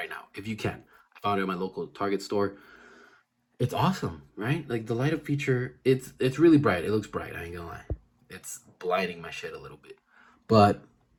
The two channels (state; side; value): identical; both; correlation 1.00